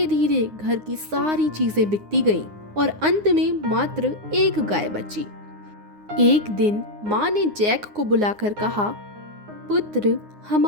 धीरे घर की सारी चीजें बिकती गईं और अंत में मात्र एक गाय बची। एक दिन माँ ने जैक को बुलाकर कहा, पुत्र,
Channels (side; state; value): left; late; 9.7 ms